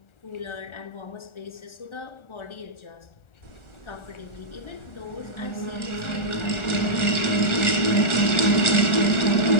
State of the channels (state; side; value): late; right; 1.4 ms